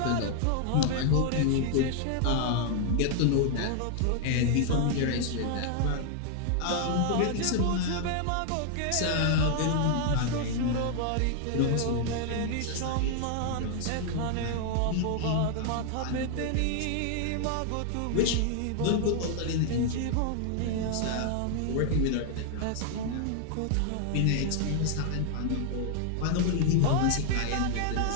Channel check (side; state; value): both; different; correlation 0.00